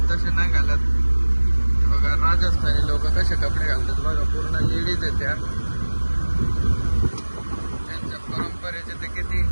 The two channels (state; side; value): inverted; both; correlation -1.00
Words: तसे नाही घालत. बघा राजस्थानी लोक कसे कपडे घालतात बघा. पूर्ण लेडीज आहेत त्या. त्यांच्या परंपरेचे ते किती